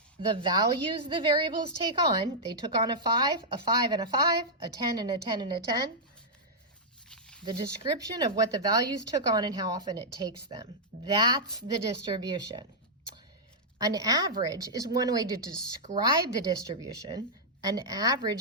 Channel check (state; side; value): normal; both; correlation -0.08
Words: the values the variables take on. They took on a 5 and a 5, a 10 and a 10 and a 10. The description of what the values took on and how often it takes them. That's the distribution. An average is one way to describe the distribution. An